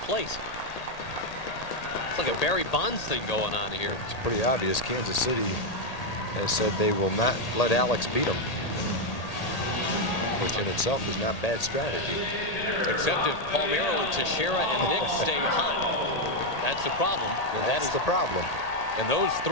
It's like a Barry Bonds thing going on here. It's pretty obvious. Kansas City has said they will not let Alex beat them, which in itself is not bad strategy. Except if Palmeiro and Teixeira and Nick stay hot. That's the problem. And that's the problem. And those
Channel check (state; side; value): late; right; 1.8 ms